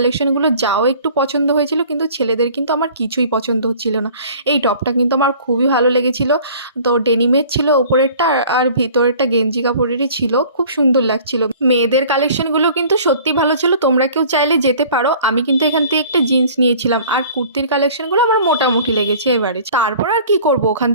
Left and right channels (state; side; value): inverted; both; correlation -0.49